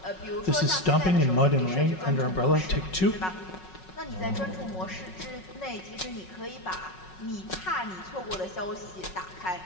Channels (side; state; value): right; late; 5.4 ms